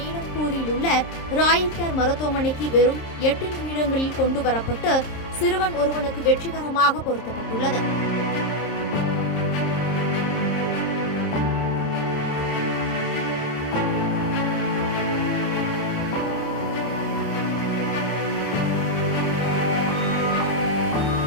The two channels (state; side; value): late; right; 26 ms